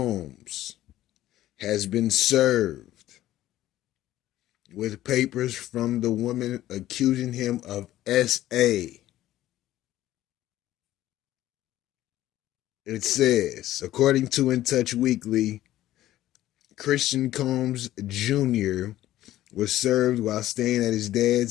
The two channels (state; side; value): quieter; right; 14.2 dB